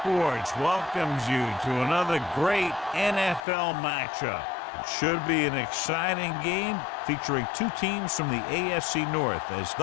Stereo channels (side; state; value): right; drops out; at 3.4 s